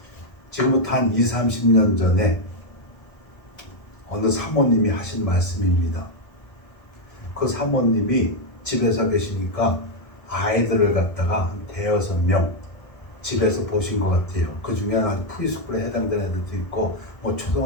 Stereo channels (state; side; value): late; right; 1.3 ms